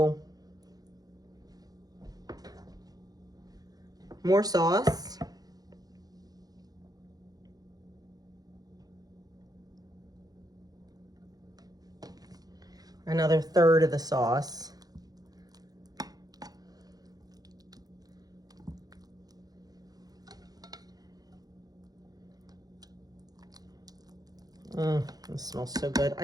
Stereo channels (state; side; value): late; left; 0.19 ms